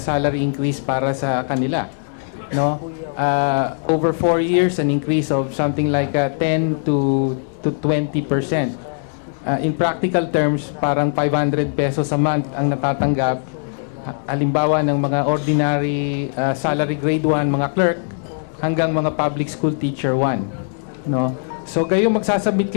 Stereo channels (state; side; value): silent; right; digital silence